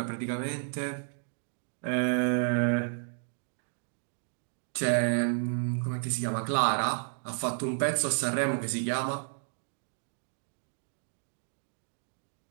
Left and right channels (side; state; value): left; silent; digital silence